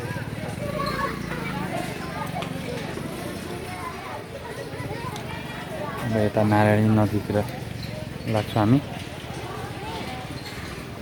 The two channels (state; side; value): identical; both; correlation 1.00